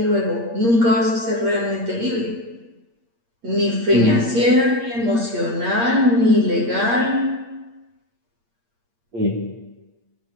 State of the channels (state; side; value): late; left; 8.6 ms